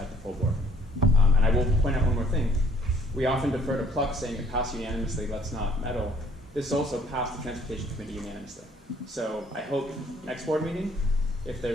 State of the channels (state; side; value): normal; both; correlation 0.61